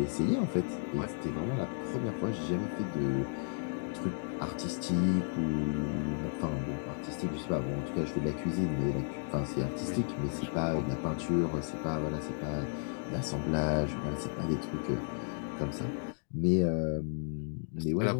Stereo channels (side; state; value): right; silent; 55 dB below the other